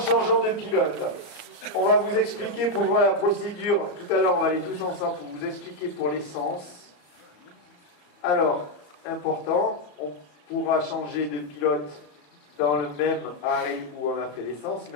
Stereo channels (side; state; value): right; late; 34 ms